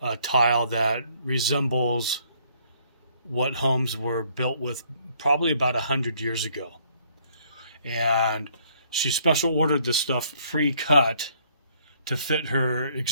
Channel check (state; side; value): inverted; both; correlation -0.65